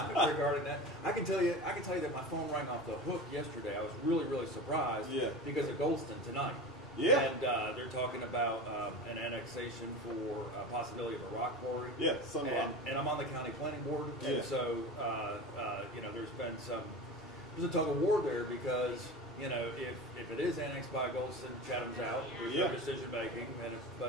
that? I can tell you that my phone rang off the hook yesterday. I was really surprised because of Goldston tonight. Yeah. And they're talking about an annexation for a possibility of a rock quarry. Yeah, and I'm on the county planning board. Yeah. And so, there's a tug of war there because, if it is annexed by Goldston, Chatham's out. There's no decision making. And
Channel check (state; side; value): noise; left; rumble, 27 dB below the sound